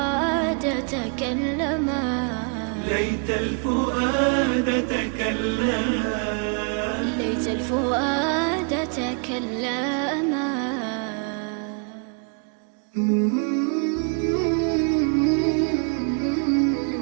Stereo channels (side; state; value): left; quieter; 39.3 dB